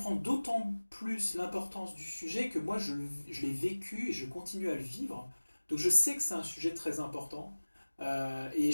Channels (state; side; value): inverted; both; correlation -1.00